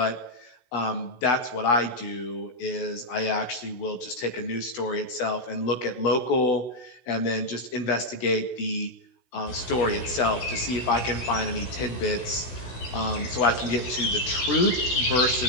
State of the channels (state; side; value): late; right; 16 ms